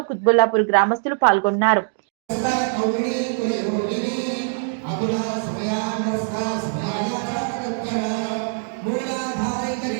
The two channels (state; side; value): silent; left; digital silence